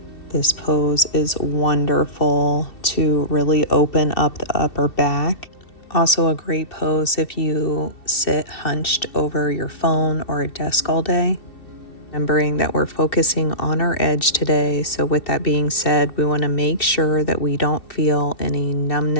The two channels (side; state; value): right; late; 2.7 ms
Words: This pose is wonderful to really open up the upper back. Also a great pose if you sit hunched over your phone or a desk all day. Remembering that we're focusing on our edge today. So with that being said, we want to make sure that we don't feel any